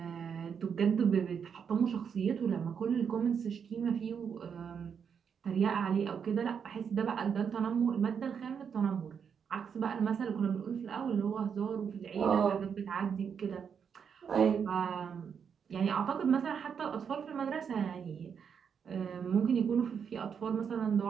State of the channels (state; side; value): quieter; left; 7.1 dB